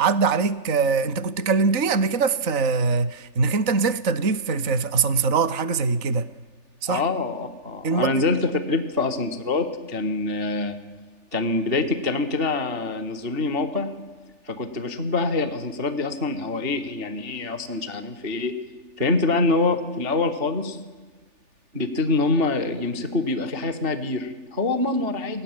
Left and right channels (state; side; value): late; left; 3.4 ms